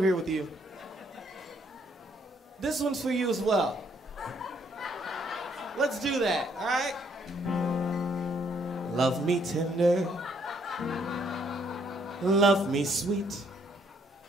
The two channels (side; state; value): both; normal; correlation 0.68